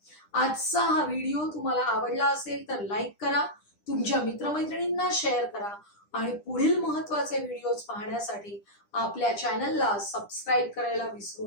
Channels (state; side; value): late; right; 9.9 ms